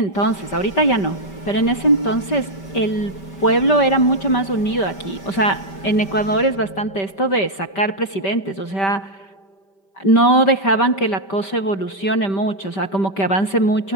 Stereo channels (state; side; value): late; right; 5.1 ms